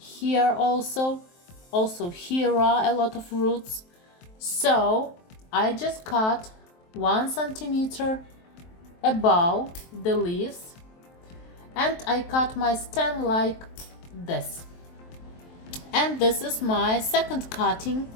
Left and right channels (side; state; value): right; late; 23 ms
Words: also here are a lot of roots. So I just cut 1 centimeter above the leaves and I cut my stem like this. And this is my second cutting